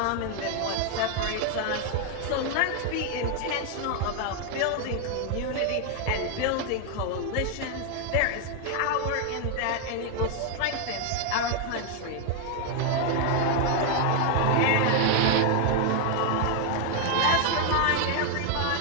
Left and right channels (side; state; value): both; different; correlation 0.00